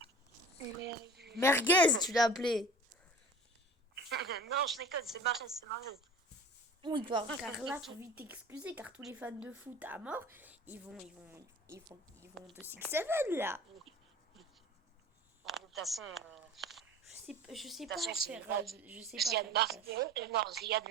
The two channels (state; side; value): normal; both; correlation 0.40